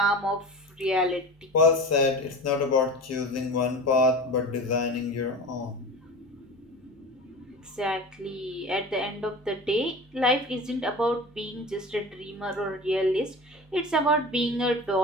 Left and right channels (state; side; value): normal; both; correlation 0.32